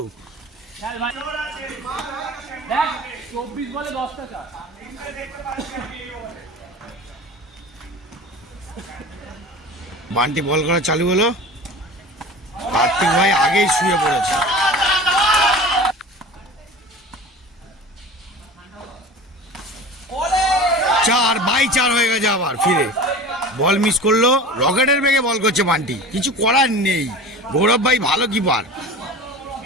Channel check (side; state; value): both; normal; correlation 0.36